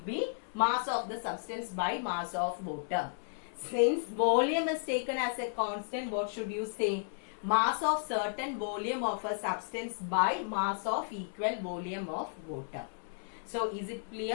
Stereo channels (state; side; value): silent; right; 55 dB below the other